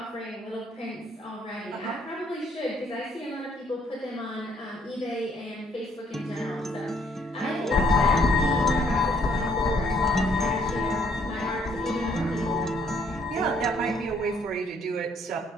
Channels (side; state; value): both; normal; correlation 0.67